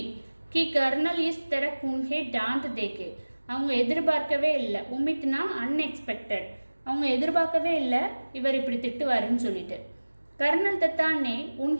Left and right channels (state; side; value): inverted; both; correlation -1.00